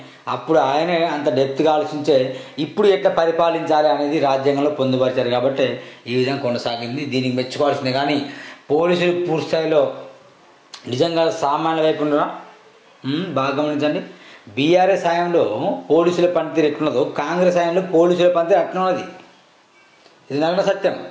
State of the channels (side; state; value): both; identical; correlation 1.00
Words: అంత డెప్త్గా ఆలోచించే ఇప్పుడు ఎట్లా పరిపాలించాలి అనేది రాజ్యాంగంలో పొందుపరిచారు. కాబట్టి ఈ విధంగా కొనసాగింది. దీనికి మెచ్చుకోవాల్సిందే. కానీ పోలీసులు పూర్తి స్థాయిలో నిజంగా సామాన్య వైపు ఉండరా బాగా గమనించండి. బీఆర్ఎస్ హయాంలో పోలీసుల పనితీరు ఎట్లున్నదో కాంగ్రెస్ హయాంలో పోలీసుల పనితీరు అట్లున్నది. ఇది నగ్న సత్యం.